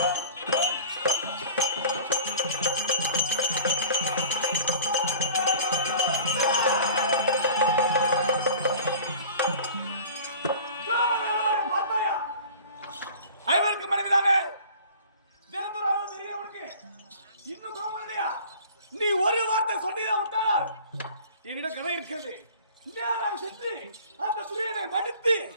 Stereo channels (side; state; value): both; inverted; correlation -0.44